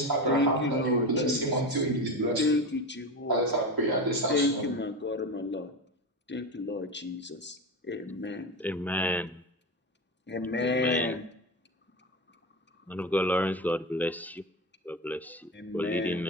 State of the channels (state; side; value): normal; both; correlation 0.22